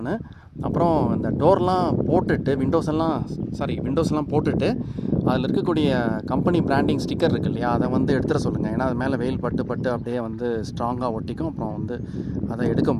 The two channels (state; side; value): identical; both; correlation 1.00